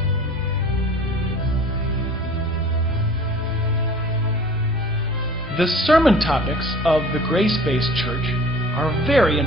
The sermon topics of the grace-based church are very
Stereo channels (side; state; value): both; normal; correlation 0.46